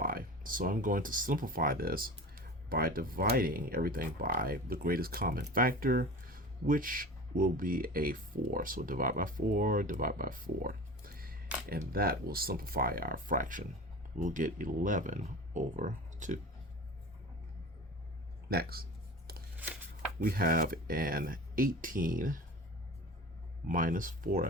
So I'm going to simplify this by dividing everything by the greatest common factor, which will be a 4. So divide by 4, divide by 4. And that will simplify our fraction. We'll get 11 over 2. Next, we have an 18 minus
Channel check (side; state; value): both; normal; correlation 0.34